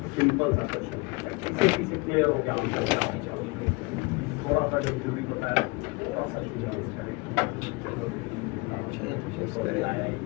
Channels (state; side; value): quieter; right; 26.5 dB